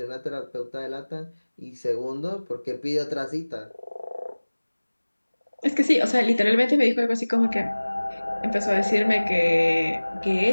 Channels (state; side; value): inverted; both; correlation -1.00